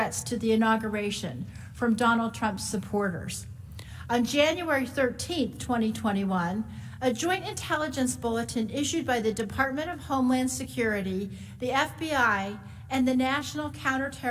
to the inauguration from Donald Trump's supporters. On January 13, 2021, a joint intelligence bulletin issued by the Department of Homeland Security, the FBI, and the National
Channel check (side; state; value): both; identical; correlation 1.00